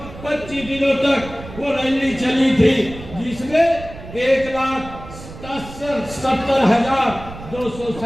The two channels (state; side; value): noise; right; rumble, 14 dB below the sound